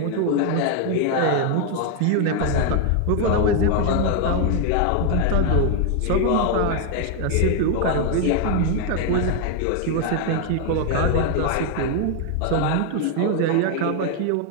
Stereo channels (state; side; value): different; both; correlation 0.00